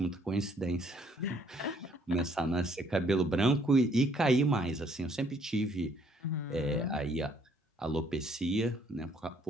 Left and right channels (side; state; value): both; normal; correlation 0.64